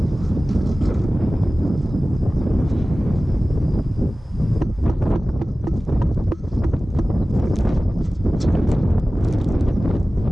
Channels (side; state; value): both; normal; correlation 0.97